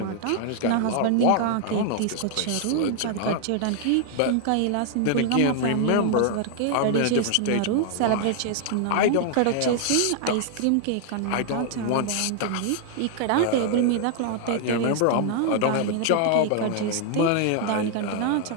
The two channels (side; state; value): both; different; correlation 0.00